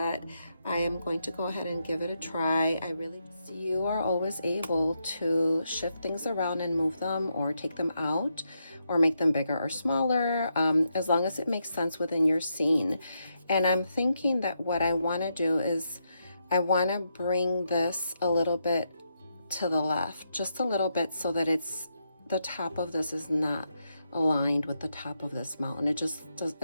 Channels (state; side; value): inverted; both; correlation -0.81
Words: I am going to go ahead and give it a try. You are always able to shift things around and move them or take them out or make them bigger or smaller, as long as it makes sense within your scene. And I'm thinking that what I want to do is I want to bring this a little bit to the left, just a little bit, so that the top of this is not aligned with the top of this mountain. It